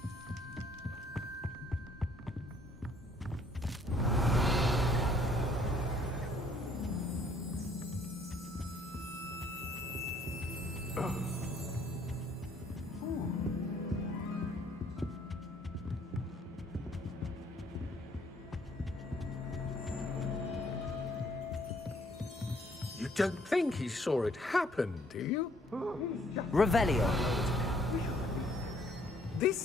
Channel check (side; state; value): both; normal; correlation 0.63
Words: You don't think he saw it happen, do you? Revelio.